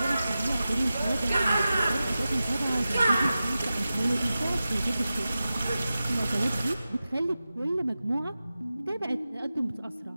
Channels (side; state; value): both; inverted; correlation -0.94